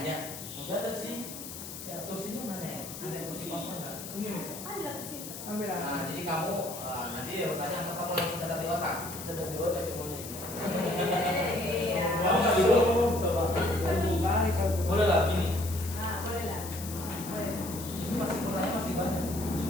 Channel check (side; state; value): left; noise; hiss, 10 dB below the sound